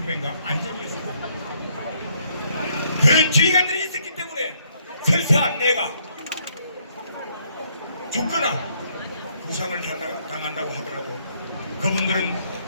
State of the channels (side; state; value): both; inverted; correlation -0.69